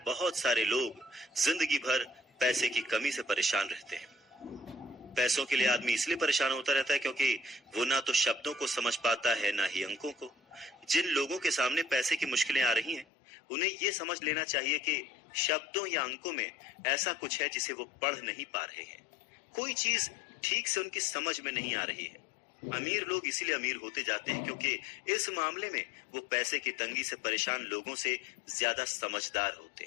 बहुत सारे लोग जिंदगी भर पैसे की कमी से परेशान रहते हैं। पैसों के लिए आदमी इसलिए परेशान होता रहता है क्योंकि वो ना तो शब्दों को समझ पाता है ना ही अंकों को। जिन लोगों के सामने पैसे की मुश्किलें आ रही हैं, उन्हें ये समझ लेना चाहिए कि शब्दों या अंकों में ऐसा कुछ है जिसे वो पढ़ नहीं पा रहे हैं। कोई चीज ठीक से उनकी समझ में नहीं आ रही है। अमीर लोग इसीलिए अमीर होते जाते हैं क्योंकि इस मामले में वो पैसे की तंगी से परेशान लोगों से ज्यादा समझदार होते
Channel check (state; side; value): drops out; right; at 13.1 s